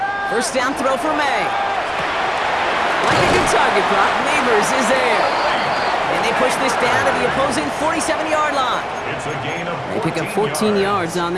First down throw for May. Like a good target, Brock. Neighbors is there. And they push this down to the opposing 47-yard line. They pick up 14 yards on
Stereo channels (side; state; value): both; identical; correlation 1.00